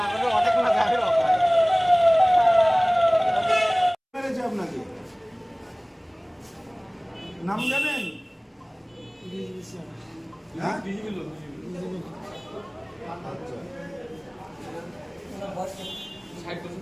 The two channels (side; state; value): both; identical; correlation 1.00